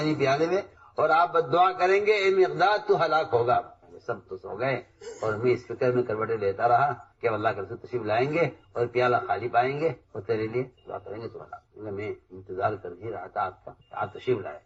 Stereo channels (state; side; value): identical; both; correlation 1.00